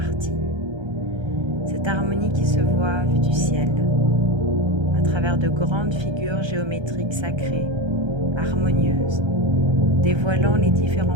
Cette harmonie qui se voit vue du ciel, à travers de grandes figures géométriques sacrées, harmonieuses, dévoilant les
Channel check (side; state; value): left; late; 1.3 ms